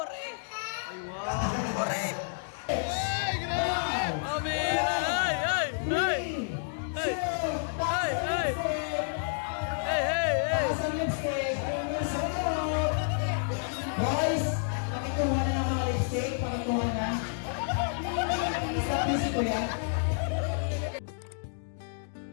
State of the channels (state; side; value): silent; right; digital silence